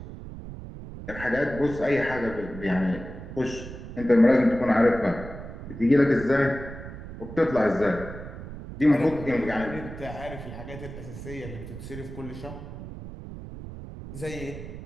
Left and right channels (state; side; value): noise; right; rumble, 11 dB below the sound